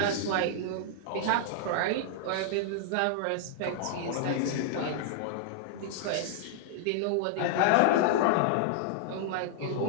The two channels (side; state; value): both; different; correlation -0.01